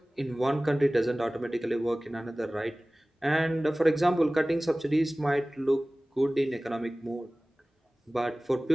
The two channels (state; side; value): normal; both; correlation 0.98